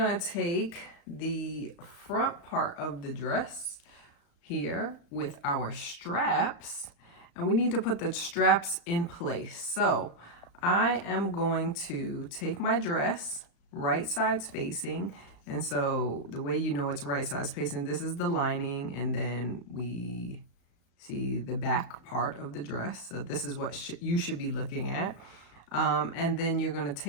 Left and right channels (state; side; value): late; right; 35 ms